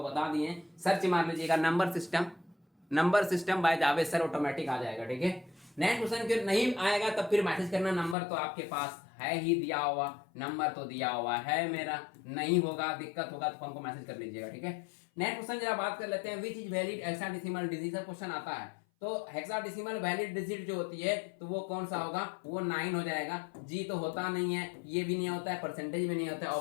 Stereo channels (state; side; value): drops out; right; at 8.2 s